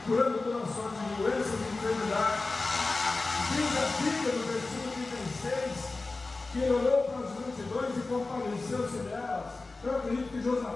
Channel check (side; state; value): right; quieter; 3.5 dB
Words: curando toda sorte de doenças e enfermidades. Diz a Bíblia no versículo 36, que ele olhou para as multidões e compadeceu-se delas. Eu acredito que